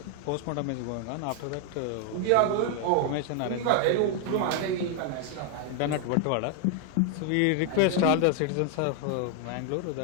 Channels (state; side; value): different; both; correlation 0.00